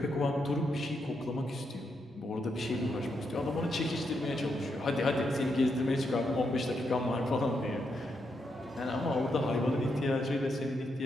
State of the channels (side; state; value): both; normal; correlation 0.81